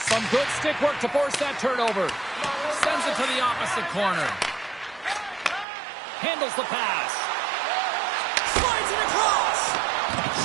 Some good stick work to force that turnover. Sends it to the opposite corner. Handles the pass. Slides it across.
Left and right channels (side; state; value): left; drops out; at 5.7 s